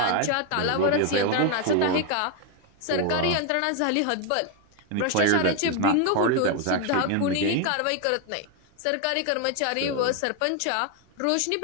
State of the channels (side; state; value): both; different; correlation 0.01